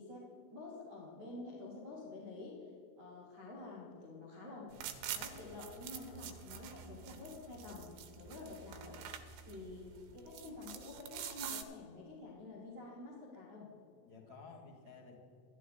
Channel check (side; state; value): left; late; 16 ms